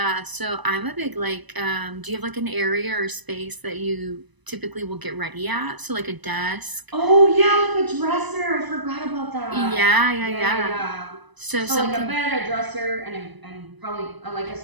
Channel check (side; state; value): left; late; 1.0 ms